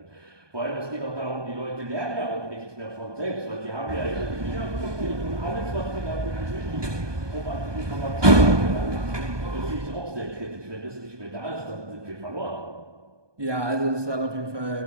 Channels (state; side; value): late; left; 1.2 ms